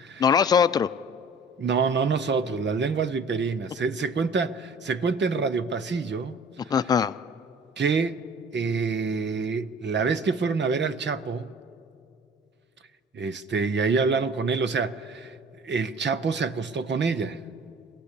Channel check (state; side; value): normal; both; correlation 0.47